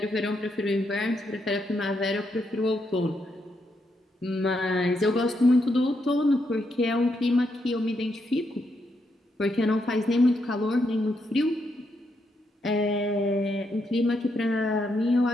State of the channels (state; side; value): normal; both; correlation 0.79